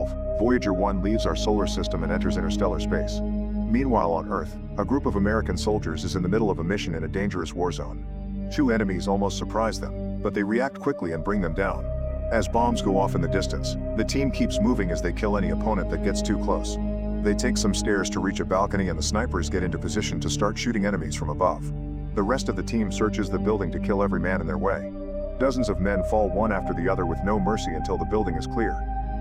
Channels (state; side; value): identical; both; correlation 1.00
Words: Voyager 1 leaves our solar system and enters interstellar space. Meanwhile on Earth, a group of American soldiers is in the middle of a mission in a dangerous war zone. Two enemies almost surprise them, but they react quickly and bring them down. As bombs go off in the distance, the team keeps moving as they kill any opponent that gets too close. They take some stairs to reach a balcony and the snipers get into position to start shooting enemies from above. The rest of the team searches the building to kill every man in their way. Dozens of men fall one after the other with no mercy until the building is clear.